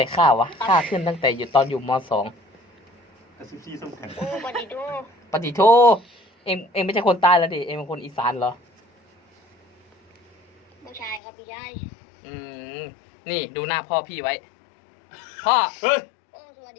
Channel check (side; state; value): right; drops out; at 11.2 s